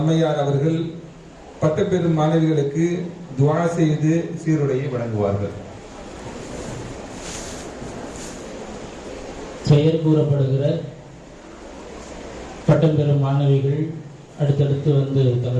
அவர்கள் பட்டம் பெறும் மாணவிகளுக்கு துஆ செய்து சீருடையை வழங்குவார்கள். பெயர் கூறப்படுகிற பட்டம் பெறும் மாணவிகள் அடுத்தடுத்து வந்து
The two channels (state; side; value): identical; both; correlation 1.00